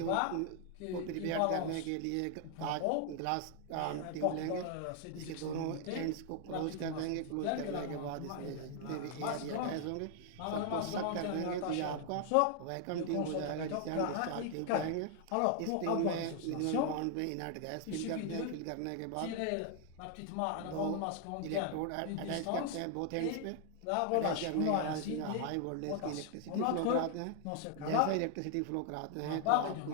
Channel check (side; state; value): both; different; correlation 0.00